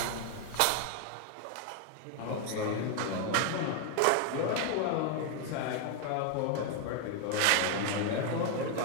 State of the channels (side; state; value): both; different; correlation 0.00